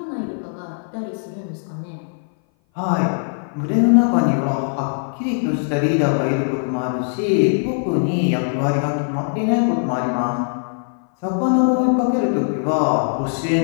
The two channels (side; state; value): right; silent; 58 dB below the other